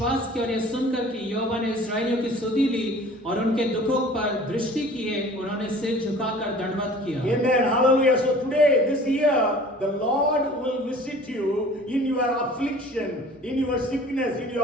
किया और यह सुनकर कि यहोवा ने इस्राएलियों की सुधि ली और उनके दुखों पर दृष्टि की है, उन्होंने सिर झुकाकर दंडवत किया। Amen. Hallelujah. So today, this year, the Lord will visit you in your affliction, in your sickness, in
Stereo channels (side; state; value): both; normal; correlation 0.47